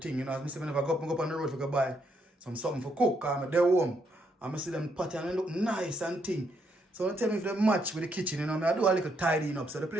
You know, as I say, whenever I go up on the road to buy something for cook. I'm there home. I'm see them pot and they look nice and thing. So don't tell me if they match with the kitchen, you know. I do a little tidying up. So the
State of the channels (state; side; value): normal; both; correlation 0.75